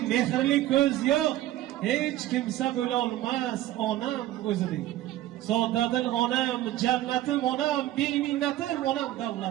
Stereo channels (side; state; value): left; quieter; 14.5 dB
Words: mehrli ko'z yo'q, hech kimsa bo'la olmas, onam o'zidek. Sodadil onam, jannatim onam, beminnatim onam,